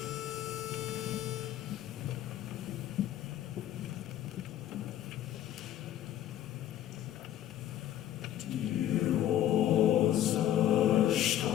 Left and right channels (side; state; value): right; quieter; 12.0 dB